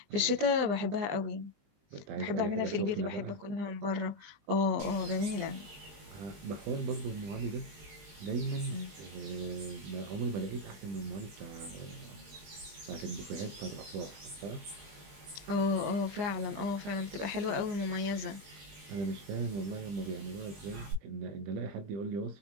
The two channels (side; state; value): left; late; 20 ms